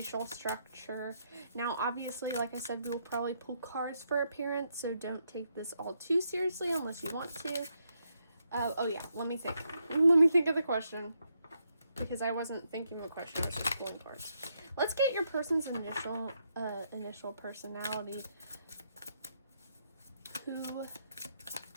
structure. Now, obviously, like I said, we will probably pull cards for appearance, so don't take this all too seriously unless you want to. Oh yeah, let me think. Let me think of the question, because I wasn't thinking of a question, I was just pulling cards. Let's get your person's initial personality.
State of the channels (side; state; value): both; inverted; correlation -0.79